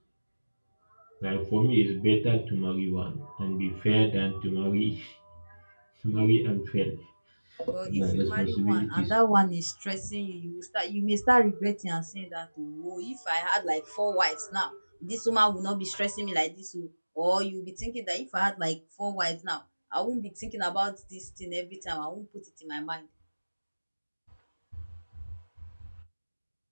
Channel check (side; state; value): both; inverted; correlation -1.00